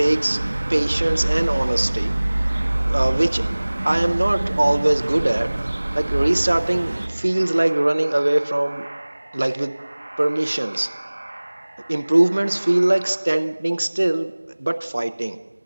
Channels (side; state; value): both; inverted; correlation -1.00